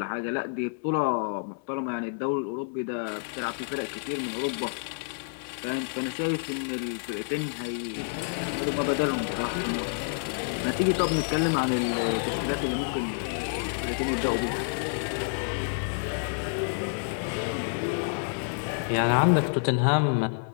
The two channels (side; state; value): right; silent; 59 dB below the other